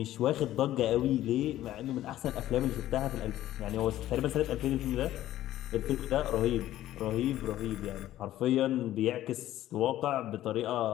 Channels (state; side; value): quieter; right; 13.7 dB